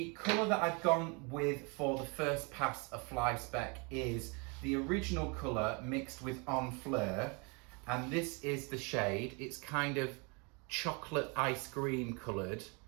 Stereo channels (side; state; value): left; quieter; 31.7 dB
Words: colour that I've gone with for the first pass of fly speck is the original colour mixed with En Fleur, and this is the shade. It's kind of chocolate ice cream coloured,